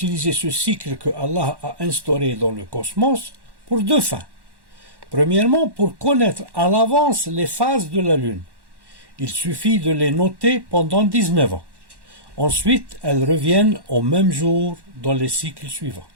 ce cycle que Allah a instauré dans le cosmos pour deux fins. Premièrement, pour connaître à l'avance les phases de la Lune. Il suffit de les noter pendant 19 ans. Ensuite, elles reviennent au même jour dans les cycles suivants.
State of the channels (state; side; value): late; left; 1.1 ms